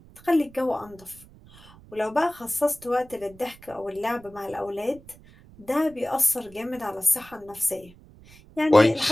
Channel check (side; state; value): right; noise; rumble, 23 dB below the sound